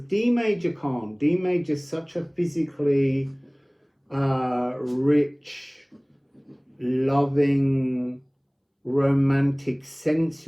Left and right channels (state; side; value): identical; both; correlation 1.00